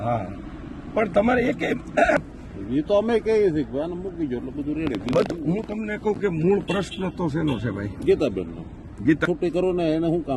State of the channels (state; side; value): identical; both; correlation 1.00